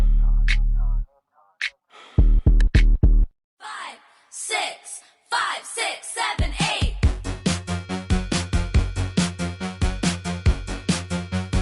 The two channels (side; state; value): both; identical; correlation 1.00